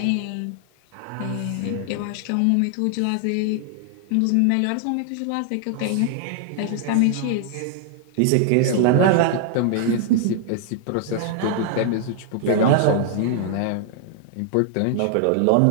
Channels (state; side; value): different; both; correlation -0.01